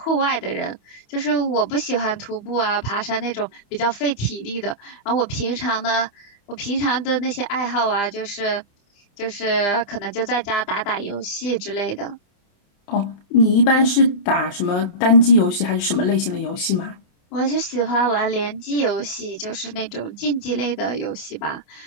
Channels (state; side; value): late; right; 28 ms